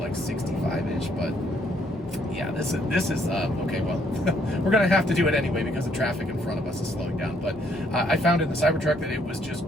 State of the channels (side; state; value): both; normal; correlation 0.68